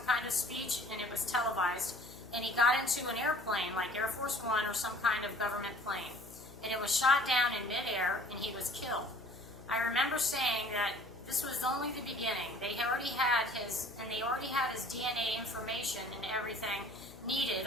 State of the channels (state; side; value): noise; left; hum, 18 dB below the sound